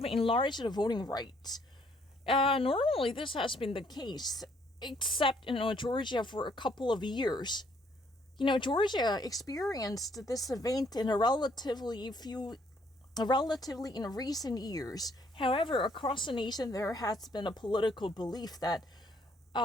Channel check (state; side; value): normal; both; correlation 0.66